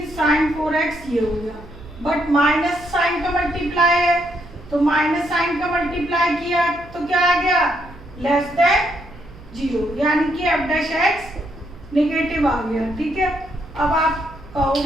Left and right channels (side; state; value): right; noise; hum, 20 dB below the sound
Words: साइन 4x ये हो गया, बट माइनस साइन का मल्टीप्लाई है, तो माइनस साइन का मल्टीप्लाई किया तो क्या आ गया लेस देन 0, यानी कि एफ डैश एक्स नेगेटिव आ गया। ठीक है, अब आप